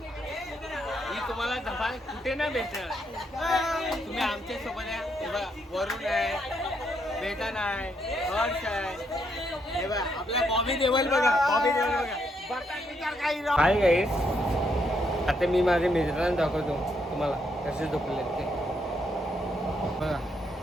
ही तुम्हाला धमाल कुठे नाही भेटणार. तुम्ही आमच्या सोबत आहे. हे बघा वरुण आहे, वेतन आहे, हर्ष आहे. हे बघा आपला बॉबी देवल बघा, बॉबी देवल बघा. काय काय आता मी माझ्या मित्रांना दाखवतो तुम्हाला कसे झोपले ते. बघा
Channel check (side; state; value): both; normal; correlation 0.76